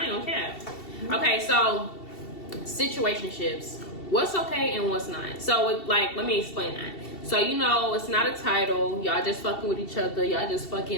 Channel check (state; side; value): late; right; 2.7 ms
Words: ain't gonna cap. Okay, so situationships. What's okay and what's not? So, like, let me explain that. So, you know, it's not a title. Y'all just fucking with each other. Y'all just